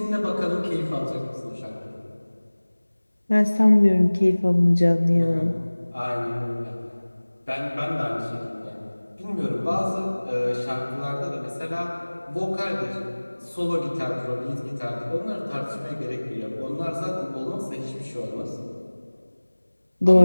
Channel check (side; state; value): both; inverted; correlation -1.00